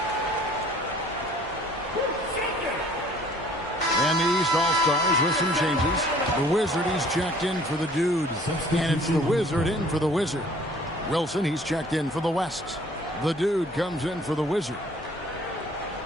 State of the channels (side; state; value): both; normal; correlation 0.55